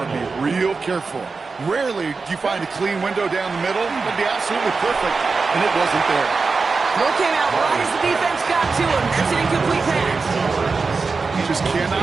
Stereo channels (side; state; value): left; quieter; 4.4 dB